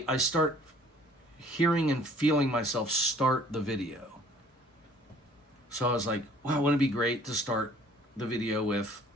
start hearing and feeling myself start the video. So I was like, wow, wouldn't it be great to start the video with,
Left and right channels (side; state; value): both; normal; correlation 0.55